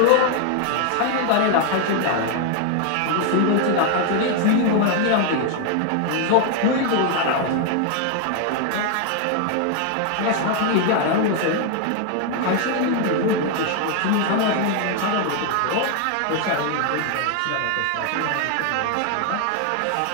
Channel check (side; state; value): both; different; correlation 0.00